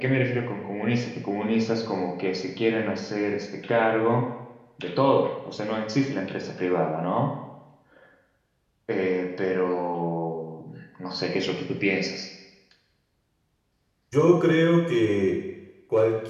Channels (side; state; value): both; identical; correlation 1.00